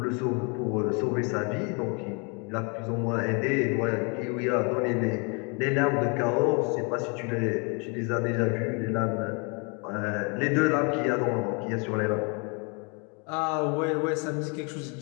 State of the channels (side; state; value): right; quieter; 32.3 dB